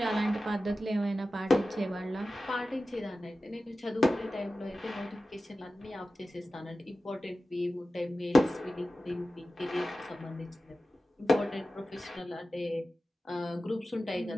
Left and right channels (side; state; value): both; normal; correlation 0.95